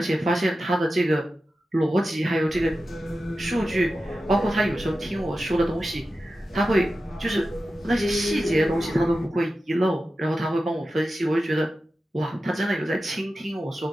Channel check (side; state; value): both; normal; correlation 0.92